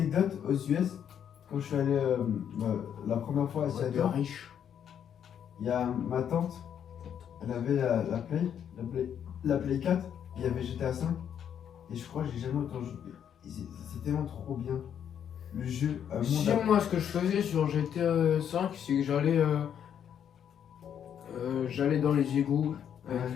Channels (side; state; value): right; quieter; 8.8 dB